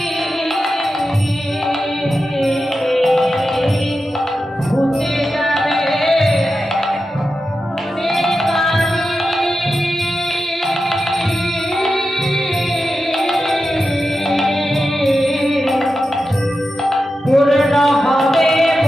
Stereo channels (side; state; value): both; normal; correlation 0.91